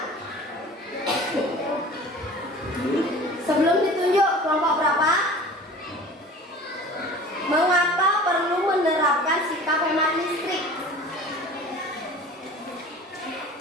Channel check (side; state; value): both; normal; correlation 0.42